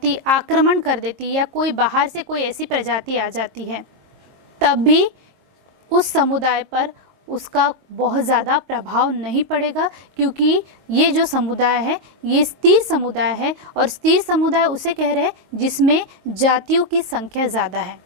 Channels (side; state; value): left; late; 22 ms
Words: आक्रमण कर देती है या कोई बाहर से कोई ऐसी प्रजाति आ जाती है, तब भी उस समुदाय पर उसका बहुत ज़्यादा प्रभाव नहीं पड़ेगा, क्योंकि ये जो समुदाय है ये स्थिर समुदाय है, और स्थिर समुदाय उसे कह रहे हैं जिसमें जातियों की संख्या ज़्यादा है।